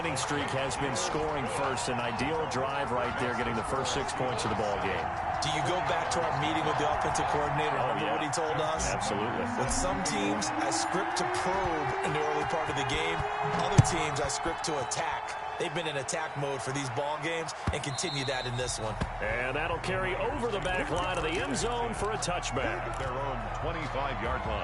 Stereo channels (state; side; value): identical; both; correlation 1.00